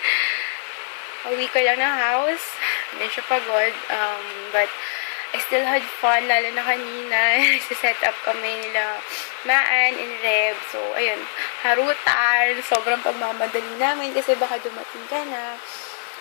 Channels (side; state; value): right; silent; digital silence